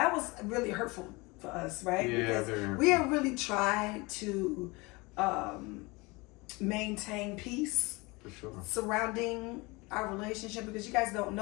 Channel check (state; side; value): quieter; right; 25.0 dB